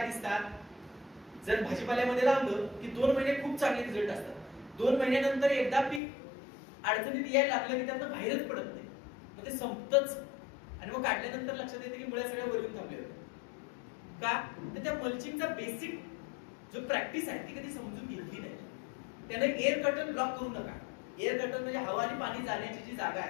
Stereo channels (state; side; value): drops out; right; at 6.0 s